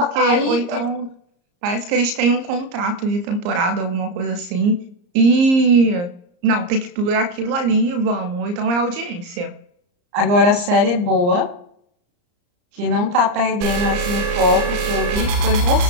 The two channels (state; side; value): late; left; 34 ms